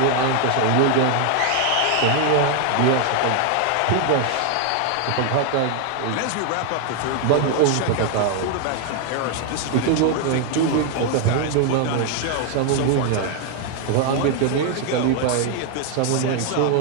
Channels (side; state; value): both; different; correlation 0.00